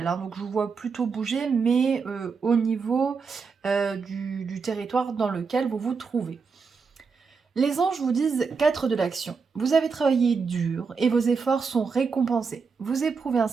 hein. Donc, je vous vois plutôt bouger, mais au niveau du territoire dans lequel vous vous trouvez. Les anges vous disent 4 de l'action. Vous avez travaillé dur et vos efforts sont récompensés. Vous éprouvez un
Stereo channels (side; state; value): left; quieter; 5.2 dB